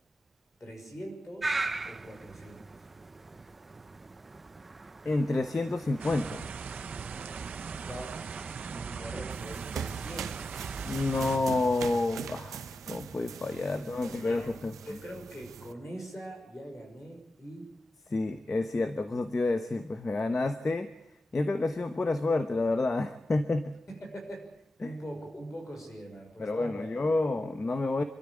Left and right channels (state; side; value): normal; both; correlation 0.91